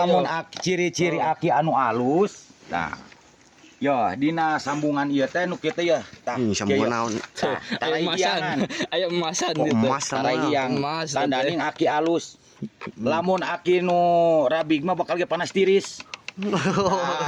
ciri-ciri aki anu alus. Nah. Yo dina sambungan ieu teh nu kieu teh ya. Tah sambungan naon? Aya emasan gitu. Emas yang tandaning aki alus. Lamun aki nu rabig mah bakal ge panas tiris.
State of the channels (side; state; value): both; identical; correlation 1.00